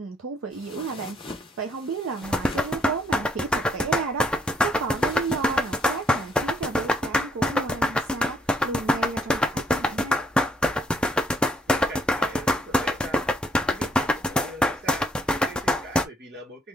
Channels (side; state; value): both; normal; correlation 0.69